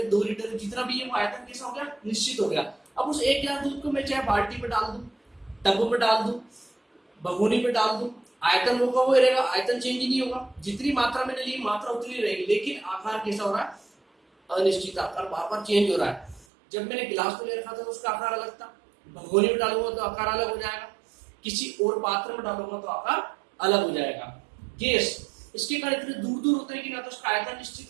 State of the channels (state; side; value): drops out; left; at 16.4 s